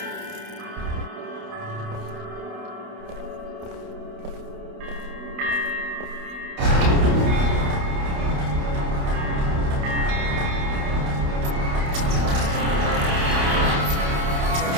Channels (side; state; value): left; late; 29 ms